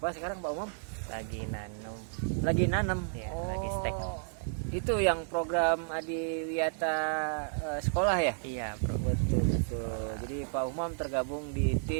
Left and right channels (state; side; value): silent; left; digital silence